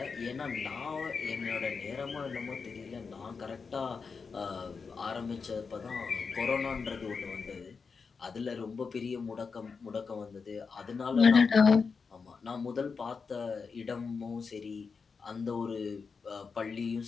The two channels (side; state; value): right; quieter; 5.2 dB